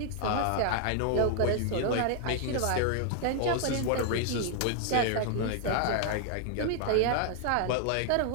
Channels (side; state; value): both; different; correlation 0.00